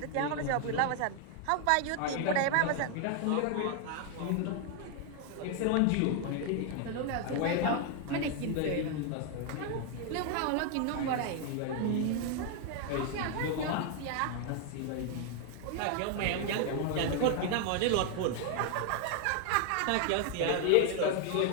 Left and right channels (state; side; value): different; both; correlation 0.00